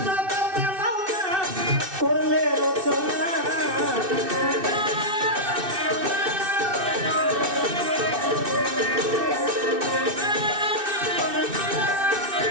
জগতে মাওনা করলে রচনা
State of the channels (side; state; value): left; late; 2.6 ms